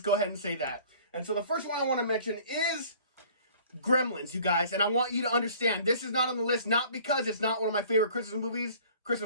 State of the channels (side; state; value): both; inverted; correlation -0.51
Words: go ahead and say that. And so the first one I want to mention is Gremlins, you guys. And I want you to understand, this is not on the list, not because it's not one of my favorite